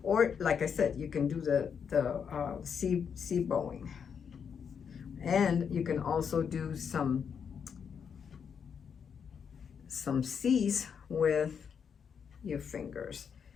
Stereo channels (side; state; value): right; quieter; 7.0 dB